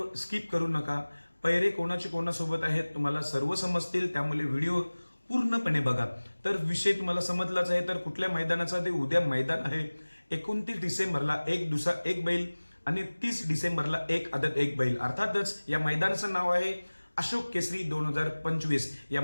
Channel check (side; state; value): both; inverted; correlation -1.00